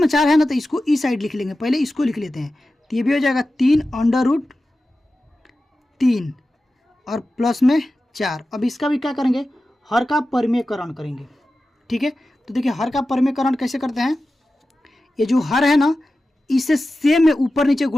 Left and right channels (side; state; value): both; normal; correlation 0.94